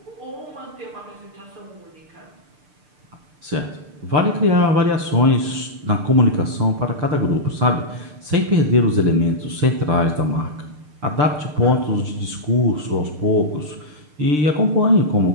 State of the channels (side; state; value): left; late; 6.7 ms